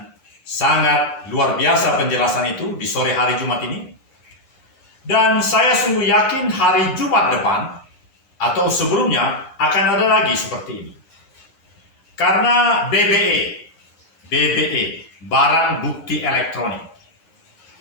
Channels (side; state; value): right; late; 11 ms